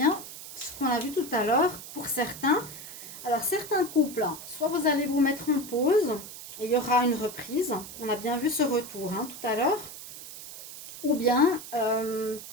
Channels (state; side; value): noise; right; hiss, 13 dB below the sound